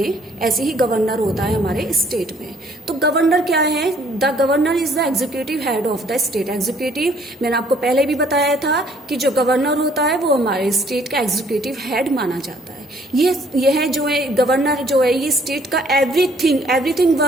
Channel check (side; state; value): both; normal; correlation 0.62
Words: ऐसे ही गवर्नर होता है हमारे स्टेट में। तो गवर्नर क्या है? The governor is the executive head of the state. Executive, मैंने आपको पहले भी बताया था कि जो गवर्नर होता है वो हमारे स्टेट का एग्जीक्यूटिव हेड माना जाता है। यह जो है गवर्नर जो है, ये स्टेट का एवरीथिंग